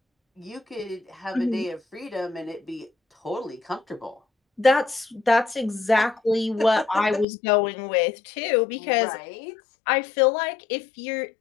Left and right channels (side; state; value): right; drops out; at 7.2 s